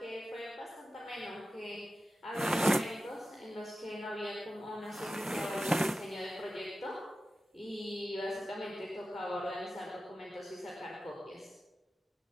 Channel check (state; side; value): normal; both; correlation 0.93